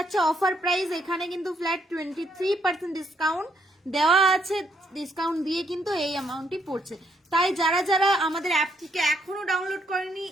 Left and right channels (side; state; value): both; normal; correlation 0.73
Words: অফার প্রাইস, এখানে কিন্তু ফ্ল্যাট 23% ডিসকাউন্ট দেওয়া আছে, ডিসকাউন্ট দিয়ে কিন্তু এই অ্যামাউন্টটি পড়ছে। তাই যারা যারা আমাদের অ্যাপটিকে এখনো ডাউনলোড করেনি,